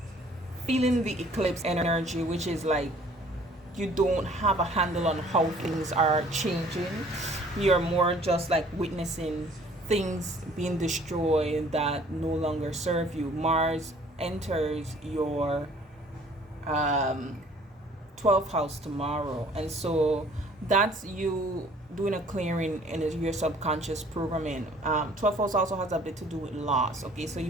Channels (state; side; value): normal; both; correlation 0.55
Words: feeling the eclipse energy, which is like you don't have a handle on how things are changing. You're more just like witnessing things being destroyed that no longer serve you. Mars enters your 12th house tomorrow, and so that's you doing a clearing in your subconscious programming. 12th house also has a bit to do with loss. Okay, so you